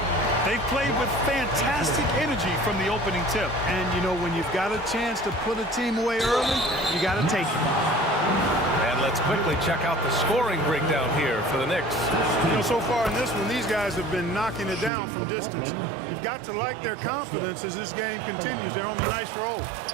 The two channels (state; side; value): drops out; left; at 14.9 s